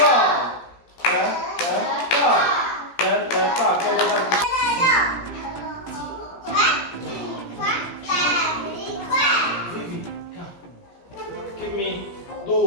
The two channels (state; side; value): late; right; 17 ms